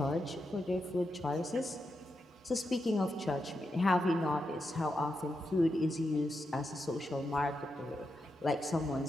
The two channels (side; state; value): both; normal; correlation 0.86